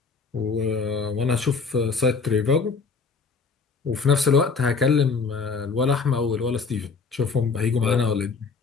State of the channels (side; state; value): right; quieter; 4.8 dB